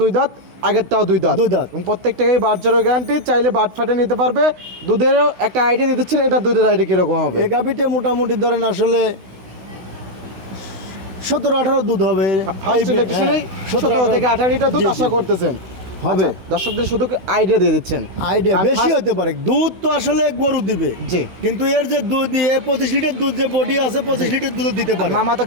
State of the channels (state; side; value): late; left; 16 ms